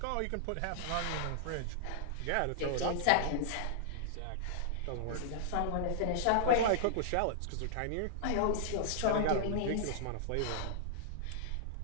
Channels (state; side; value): different; both; correlation -0.01